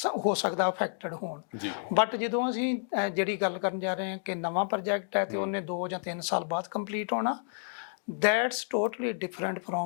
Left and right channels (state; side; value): silent; right; digital silence